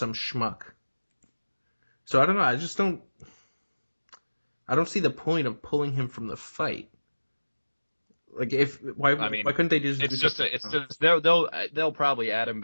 schmuck. So I don't know. I don't see the point of pulling him from the fight. Like I mean, why couldn't they just they'll probably add him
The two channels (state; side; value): inverted; both; correlation -1.00